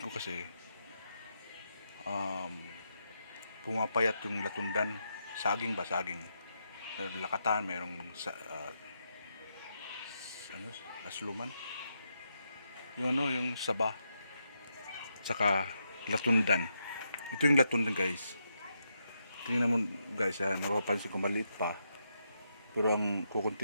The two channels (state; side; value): inverted; both; correlation -0.82